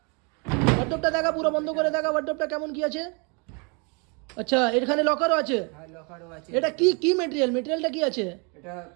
ওয়ার্ডরোবটা দেখা পুরো বন্ধ করে দেখা ওয়ার্ডরোবটা কেমন কি আছে। আচ্ছা এখানে লকারও আছে। হ্যাঁ লকারও আছে। এটা কি কি মেটেরিয়াল? মেটেরিয়ালটা কি আছে? এটা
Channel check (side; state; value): left; quieter; 33.4 dB